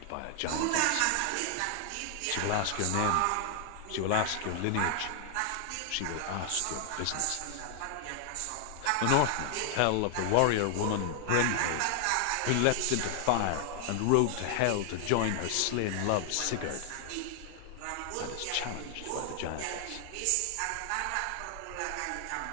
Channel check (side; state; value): both; different; correlation 0.00